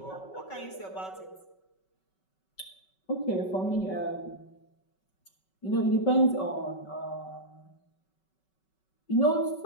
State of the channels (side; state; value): right; late; 5.3 ms